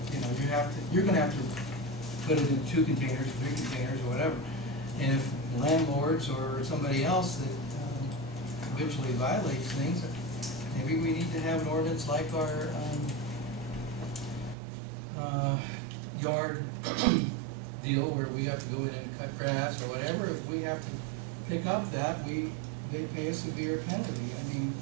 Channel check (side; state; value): left; drops out; at 14.6 s